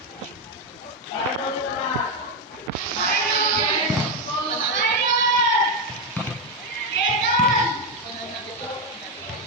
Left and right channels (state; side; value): normal; both; correlation 0.07